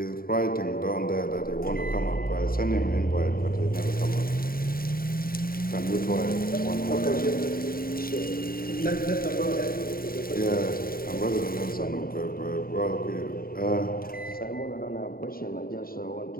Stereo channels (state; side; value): late; right; 0.43 ms